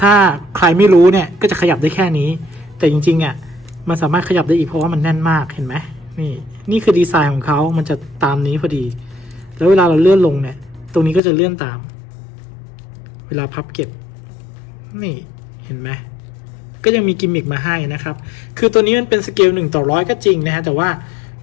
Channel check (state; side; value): drops out; right; at 11.2 s